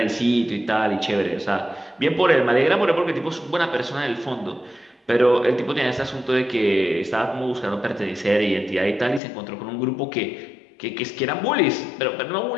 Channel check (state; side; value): drops out; right; at 9.2 s